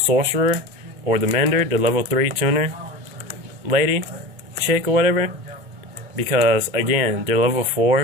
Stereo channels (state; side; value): late; left; 2.2 ms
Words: or the Mender, the level 3 tuner lady, chick, or whatever. Because, again, they're level